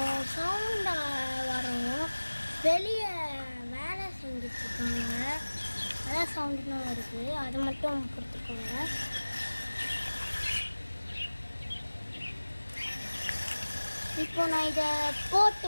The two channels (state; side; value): inverted; both; correlation -1.00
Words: சவுண்ட் வரும், வெளியே வேலை செஞ்சிட்ருக்காங்க, அதான் சவுண்டுலாம் வருது, அதை மட்டும் கொடுத்துக்கோங்க. இப்போ நான் இதை போட்டு